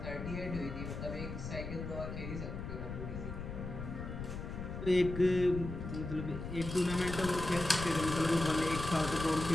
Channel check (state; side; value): noise; left; rumble, 7 dB below the sound